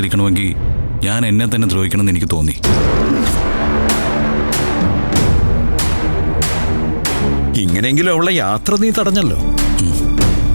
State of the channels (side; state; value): both; inverted; correlation -1.00